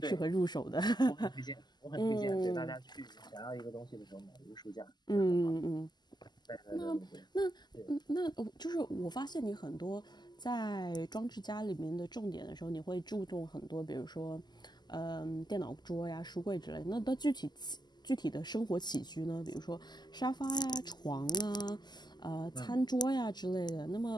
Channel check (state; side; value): late; right; 0.21 ms